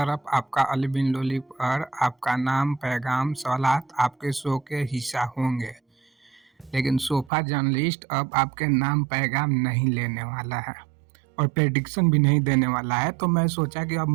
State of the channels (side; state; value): left; drops out; at 7.3 s